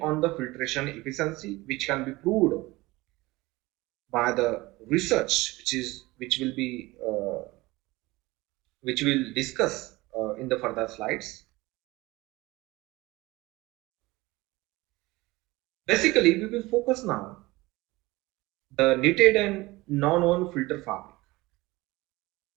on the filtration efficiency, which can be proved by the research which will be which we'll discuss in the further slides. Basically, we will focus now the knitted and non-woven filter fabric.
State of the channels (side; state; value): left; quieter; 20.7 dB